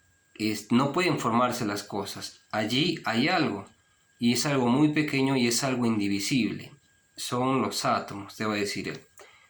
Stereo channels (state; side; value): identical; both; correlation 1.00